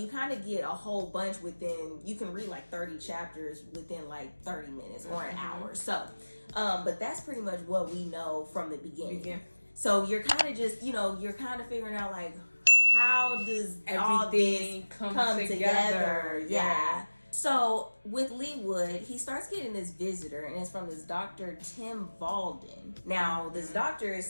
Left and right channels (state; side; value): inverted; both; correlation -1.00